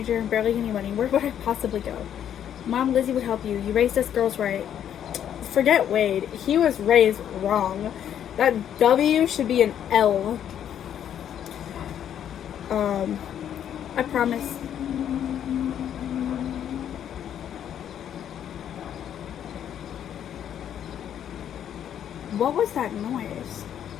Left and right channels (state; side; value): quieter; right; 9.7 dB